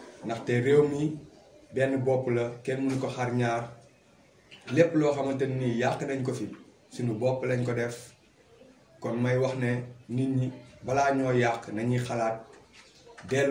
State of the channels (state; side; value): identical; both; correlation 1.00